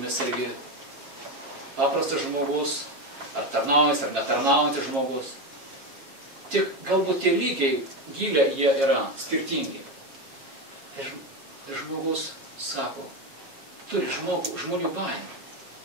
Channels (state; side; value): late; left; 7.4 ms